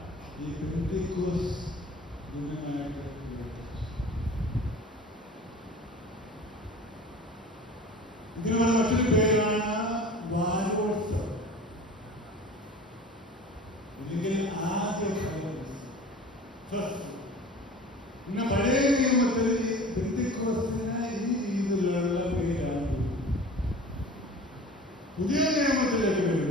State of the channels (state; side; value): normal; both; correlation 0.40